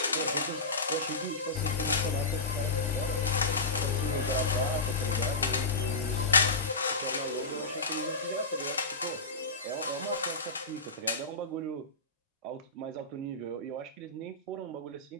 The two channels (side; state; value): right; quieter; 3.3 dB